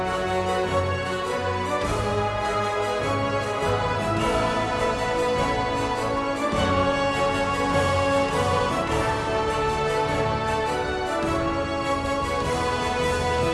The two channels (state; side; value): identical; both; correlation 1.00